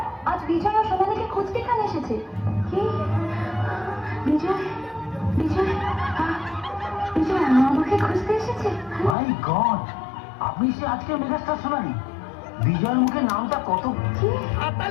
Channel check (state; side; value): drops out; right; at 9.2 s